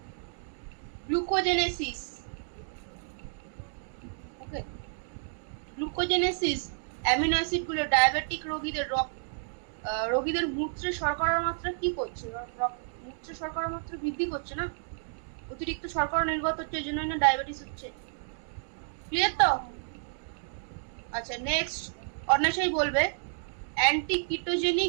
গ্লুকোজেনেসিস, ওকে, গ্লুকোজেনেসিস অ্যামিনো অ্যাসিডগুলো ডায়াবেটিক রোগীদের মূত্রে শর্করার মাত্রা কি করছে? মূত্রে শর্করার মাত্রা বৃদ্ধি করছে না, অতিরিক্ত শর্করা নির্গত হচ্ছে, এই জন্য না ডায়াবেটিস হচ্ছে। ক্লিয়ার তো? আচ্ছা, নেক্সট অন্বেষাই বলবে অ্যান্টি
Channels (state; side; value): silent; left; digital silence